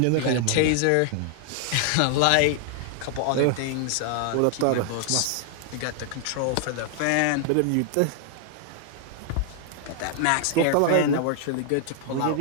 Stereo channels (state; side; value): different; both; correlation 0.00